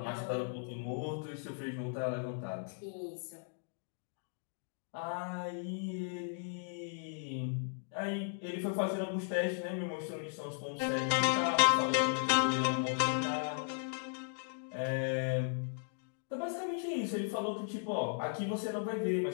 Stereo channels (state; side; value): silent; right; digital silence